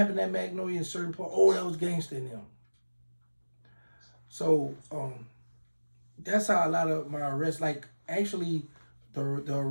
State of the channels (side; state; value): both; inverted; correlation -1.00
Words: at Magnolia in certain part, oh, that was gangster in them. So that's how a lot of my arrests, like actually the